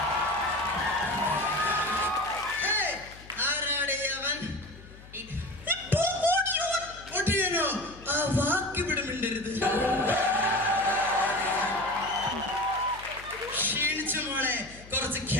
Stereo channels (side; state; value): left; noise; hum, 19 dB below the sound